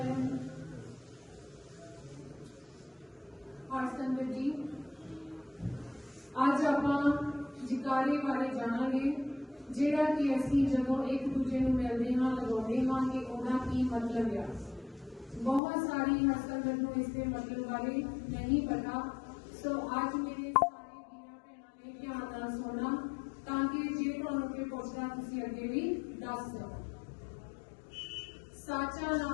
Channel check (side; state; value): right; drops out; at 15.6 s